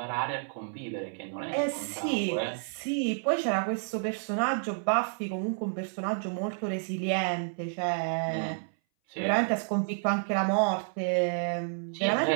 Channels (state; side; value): silent; left; 58 dB below the other